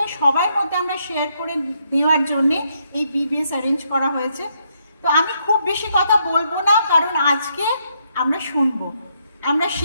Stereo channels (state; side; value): inverted; both; correlation -0.75